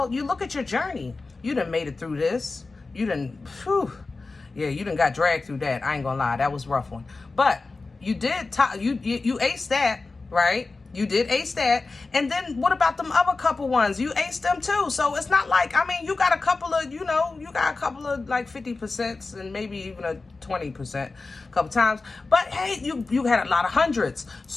you look at your journey. You done made it through this. You done, you done got dragged through that. I ain't gonna lie, that was a rough one. But you did, you aced that, right? You did ace that. And then what about them other couple ones? You aced them too. So it's not like, I mean, you got a couple of, you know, you got a couple of like 50% and maybe even a 20% a couple times. But hey, you had a lot of hundreds.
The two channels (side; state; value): right; quieter; 3.7 dB